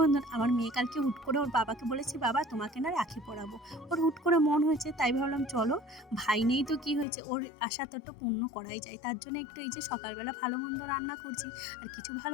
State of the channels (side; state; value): right; drops out; at 7.1 s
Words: আমার মেয়ে কালকে হুট করে ওর বাবাকে বলেছি, বাবা তোমাকে না রাখি পরাবো। ওর হুট করে মন হয়েছে, তাই ভাবলাম চলো, ভাই নেই তো কি হয়েছে, ওর আশা তো একটু পূর্ণ করাই যায়। তার জন্য একটু এই যে সকালবেলা ভালো মন্দ রান্না করছি। আর কিছু ভালো